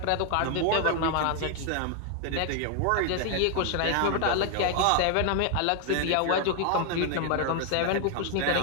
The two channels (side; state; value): both; different; correlation 0.00